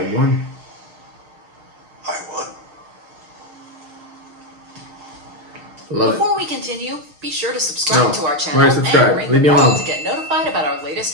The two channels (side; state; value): left; late; 6.5 ms